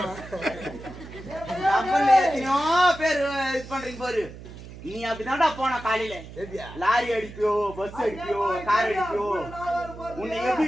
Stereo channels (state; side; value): noise; right; hum, 15 dB below the sound